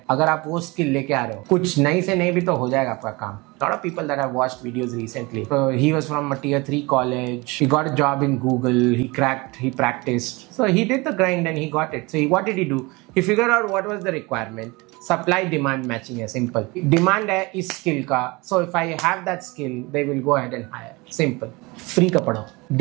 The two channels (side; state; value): left; quieter; 24.8 dB